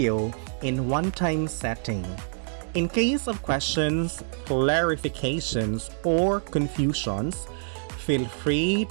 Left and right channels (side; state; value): left; silent; 61 dB below the other